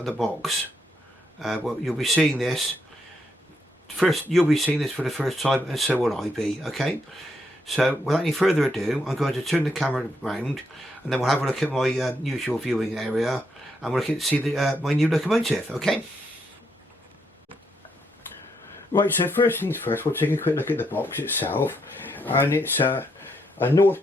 of the box. Well, you'll be seeing this first. You'll be seeing this for the first time, and so will I be. Okay. So, without any further ado, I'm going to turn the camera around, and then we'll have a look at my usual viewing area, and we'll see my new locomotive. Okay. Right. So first things first, we'll take a quick look at the box itself, and it's a North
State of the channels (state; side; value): normal; both; correlation 0.78